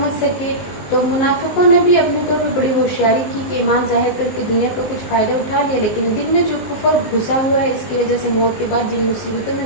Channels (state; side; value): late; right; 19 ms